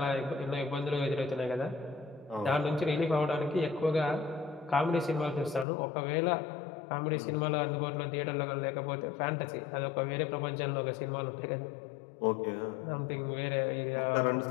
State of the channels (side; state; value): right; drops out; at 5.7 s